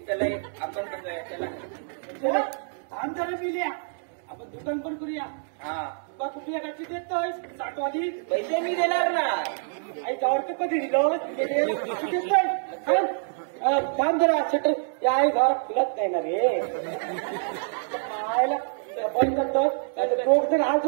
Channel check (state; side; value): silent; left; digital silence